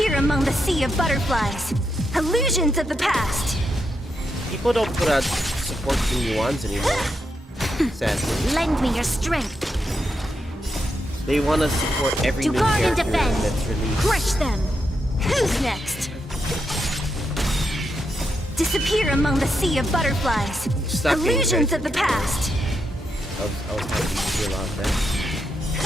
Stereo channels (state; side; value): normal; both; correlation 0.83